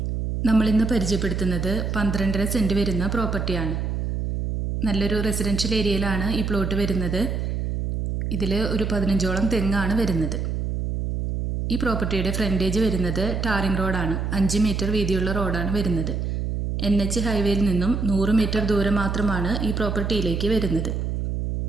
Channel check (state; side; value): noise; right; hum, 2 dB below the sound